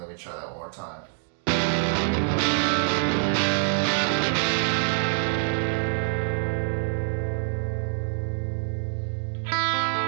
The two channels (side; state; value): left; silent; 61 dB below the other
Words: Let me try that one more time.